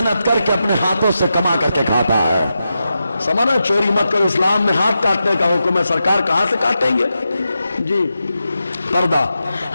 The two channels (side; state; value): both; inverted; correlation -0.89